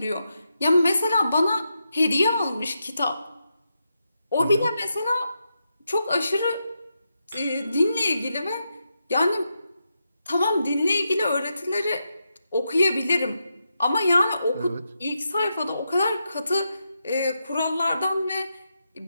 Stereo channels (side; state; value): both; inverted; correlation -0.85